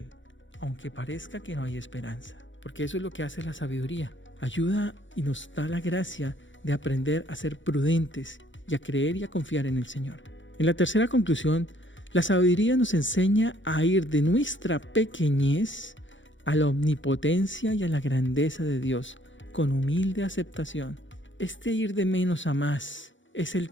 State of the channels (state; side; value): late; right; 0.55 ms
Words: aunque parezca que no hay esperanza. Porque eso es lo que hace la sabiduría. Ayuda y nos da la gracia de aprender a ser prudentes y a creer y a confiar en el Señor. En la tercera conclusión, la sabiduría nos enseña a ir de nuestra pequeñez a la omnipotencia y a la grandeza de Dios, con humilde aceptación. Este ir de menos a más es el